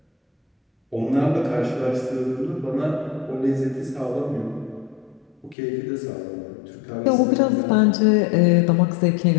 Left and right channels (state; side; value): drops out; right; at 5.6 s